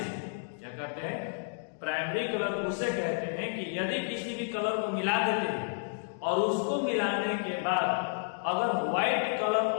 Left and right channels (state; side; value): silent; right; digital silence